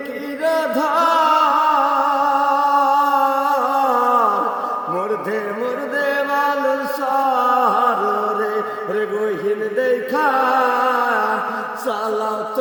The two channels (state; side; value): identical; both; correlation 1.00